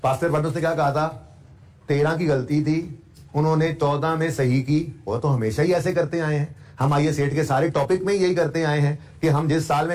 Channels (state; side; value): identical; both; correlation 1.00